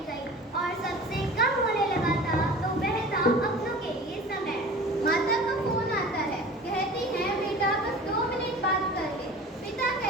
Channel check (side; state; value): both; normal; correlation 0.40